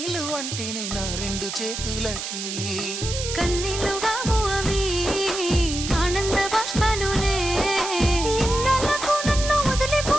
అంటేనే నా 2 చేతులకి కన్నీళ్ళు కావు అవి ఆనంద బాష్పాలులే. ఇన్నాళ్ళకు నన్ను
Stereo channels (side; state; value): right; noise; hiss, 6 dB below the sound